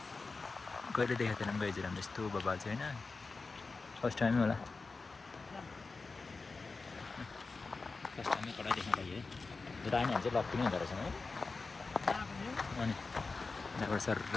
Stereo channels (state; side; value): quieter; right; 4.0 dB